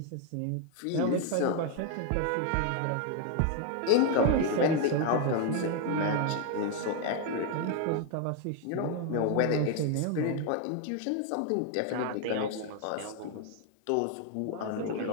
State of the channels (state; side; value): different; both; correlation 0.01